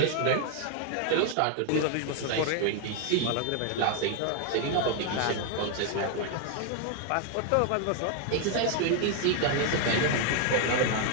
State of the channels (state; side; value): different; both; correlation 0.01